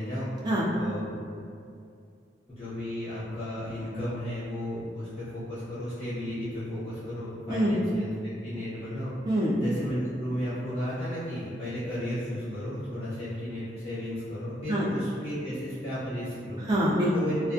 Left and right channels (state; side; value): normal; both; correlation 0.74